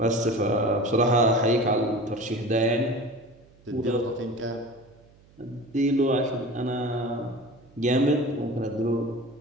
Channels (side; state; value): right; noise; hum, 28 dB below the sound